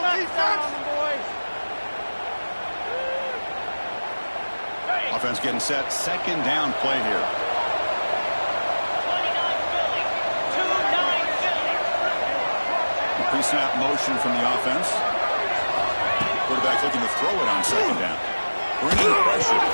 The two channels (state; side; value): inverted; both; correlation -1.00